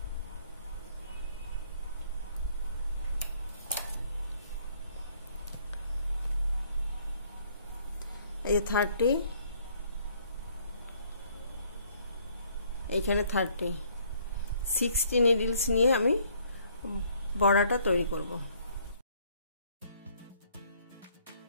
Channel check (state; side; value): inverted; both; correlation -0.63